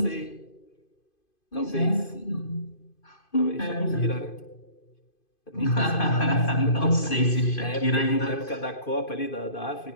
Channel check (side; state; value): right; late; 2.5 ms